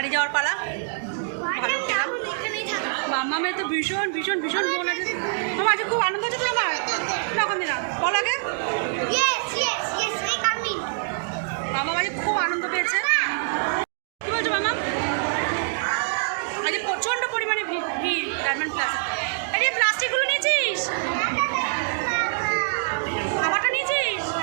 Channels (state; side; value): silent; left; digital silence